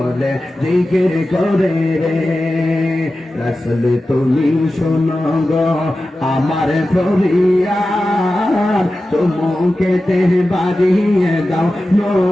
জিকির করে রে। রাসূল তুমি শোনো গো আমার ফরিয়াদ, চুমুকেতে বাড়িয়ে দাও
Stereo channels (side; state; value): both; normal; correlation 0.94